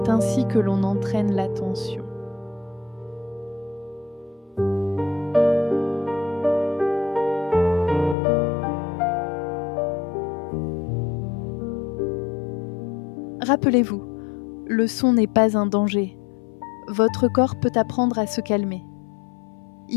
ainsi que l'on entraîne l'attention. Rappelez-vous, le son n'est pas un danger. Votre corps peut apprendre à se calmer.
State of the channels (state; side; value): drops out; right; at 8.2 s